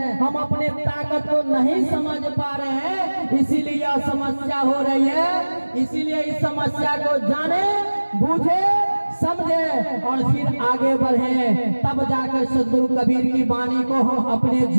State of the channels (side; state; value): both; inverted; correlation -1.00